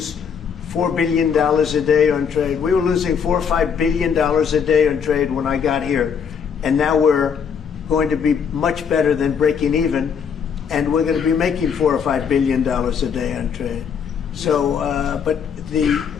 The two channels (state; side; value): quieter; right; 6.9 dB